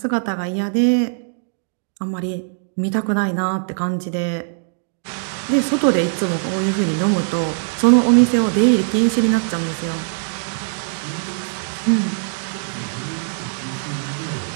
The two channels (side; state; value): left; silent; digital silence